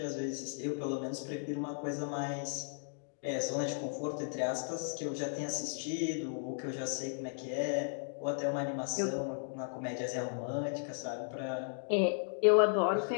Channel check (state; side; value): silent; right; digital silence